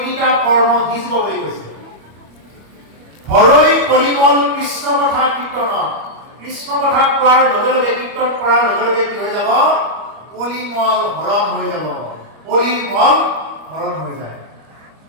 কৰ্ম হিজব বুলি কৈছে হৰৈ কলিমল কৃষ্ণ কথা কীৰ্তন কৃষ্ণ কথা কোৱাৰ লগে লগে কীৰ্তন কৰাৰ লগে লগে কি হৈ যাব কলিমল হৰণ হৈ যাব কলিমল হৰণ হৈ যায়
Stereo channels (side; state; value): left; late; 25 ms